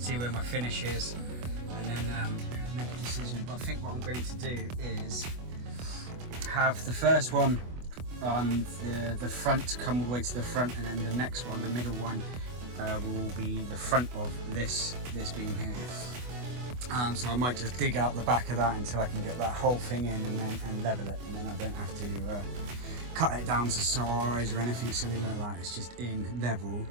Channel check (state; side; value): late; left; 24 ms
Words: where my finish is. And then make a decision. But I think what I'm going to do is have the first one on the front, come all the way to the front, and then the next one, the middle one, will be the front of this beam here. So I might just dig out the back of that until I can get that whole thing in and level it, and then I don't have to cut it down to size or anything silly like that. It's just in level,